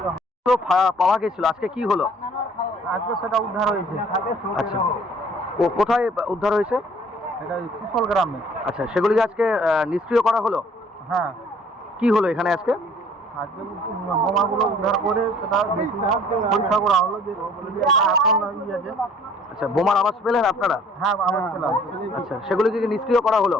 রহমান। তো পাওয়া গেছিল, আজকে কি হলো? আজকে সেটা উদ্ধার হয়েছে। আচ্ছা, ও কোথায় উদ্ধার হয়েছে? এটা কুশল গ্রামে। আচ্ছা, সেগুলিকে আজকে নিষ্ক্রিয় করা হলো? হ্যাঁ, কি হলো এখানে আজকে? আজকে বোমাগুলো উদ্ধার করে সেটা পরীক্ষা করা হলো যে এখন আছে। আচ্ছা, বোমার আওয়াজ পেলেন আপনারা? হ্যাঁ, আমার পেলাম। আচ্ছা, সেগুলিকে কি নিষ্ক্রিয় করা হলো?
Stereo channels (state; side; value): normal; both; correlation 0.55